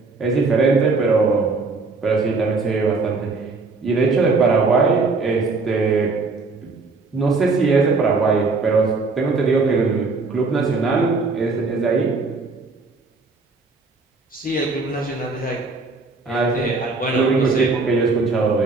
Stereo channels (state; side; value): quieter; left; 3.9 dB